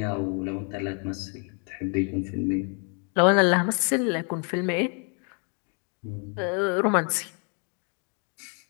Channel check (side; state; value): right; quieter; 39.2 dB